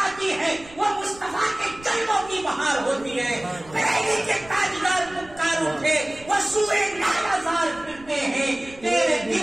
ہے، وہ مصطفیٰ کے جنموں کی بہار ہوتی ہے۔ پہلی کے تاجدار پکار اٹھے، وہ سوئے لالا زار پھرتے ہیں، تیرے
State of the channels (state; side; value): noise; right; rumble, 22 dB below the sound